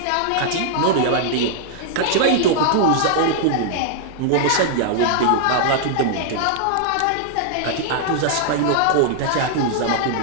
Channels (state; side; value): different; both; correlation -0.01